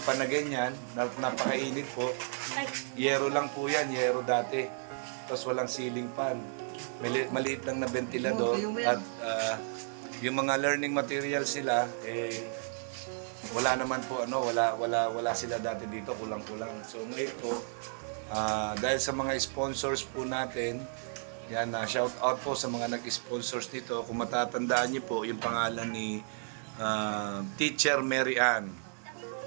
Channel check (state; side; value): silent; left; 56 dB below the other